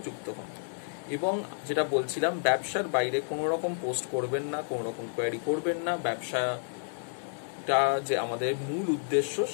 যুক্ত হন। এবং যেটা বলছিলাম, ব্যবসার বাইরে কোনো রকম পোস্ট করবেন না, কোনো রকম কোয়ারি করবেন না। ব্যবসাটা যে আমাদের মূল উদ্দেশ্য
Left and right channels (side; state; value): right; silent; digital silence